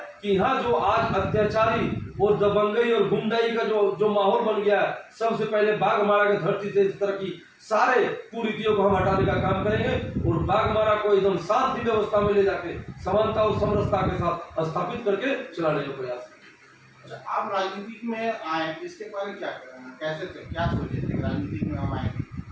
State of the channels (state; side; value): identical; both; correlation 1.00